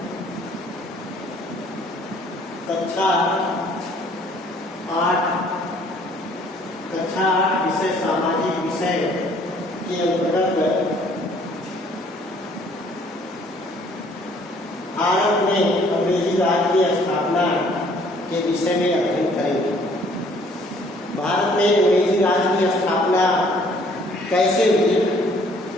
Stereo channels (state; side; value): normal; both; correlation 0.60